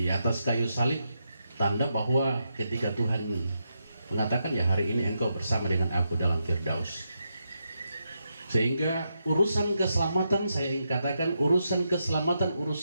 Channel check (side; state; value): both; inverted; correlation -0.84